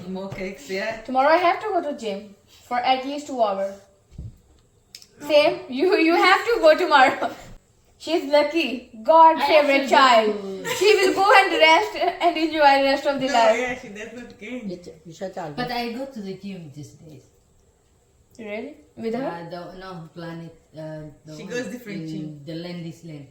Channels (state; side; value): identical; both; correlation 1.00